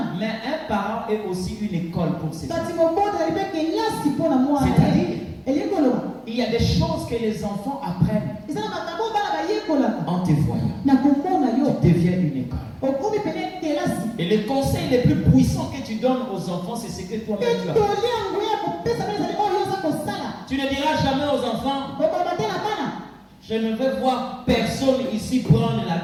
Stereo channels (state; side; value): identical; both; correlation 1.00